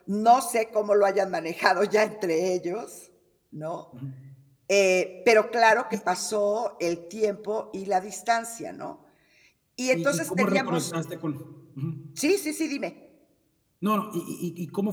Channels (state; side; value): identical; both; correlation 1.00